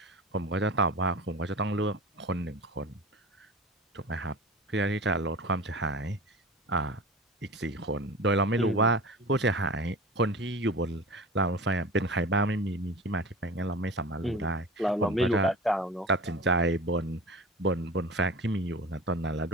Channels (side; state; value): both; normal; correlation 0.35